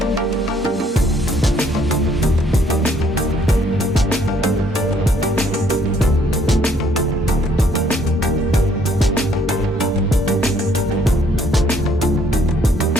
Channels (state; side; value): normal; both; correlation 0.65